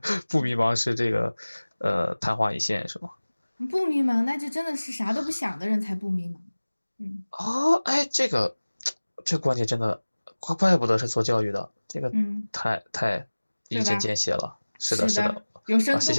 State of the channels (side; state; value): both; inverted; correlation -1.00